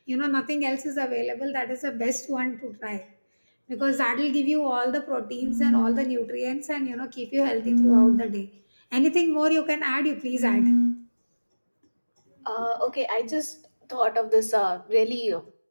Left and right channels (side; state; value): both; inverted; correlation -1.00